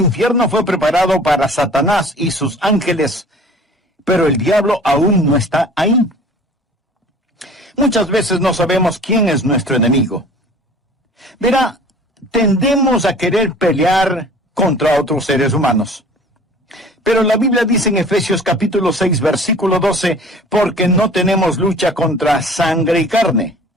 fue preparado para Satanás y sus ángeles, pero el diablo aún no está ahí. Muchas veces no sabemos quién es nuestro enemigo. Verá, tendemos a querer pelear contra otros seres humanos. Pero la Biblia dice en Efesios capítulo 6, versículo 12, porque no tenemos lucha contra sangre y carne,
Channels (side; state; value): both; normal; correlation 0.46